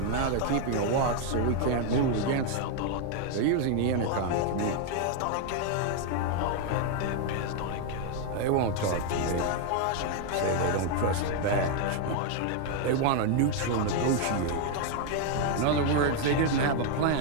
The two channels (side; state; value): both; different; correlation 0.00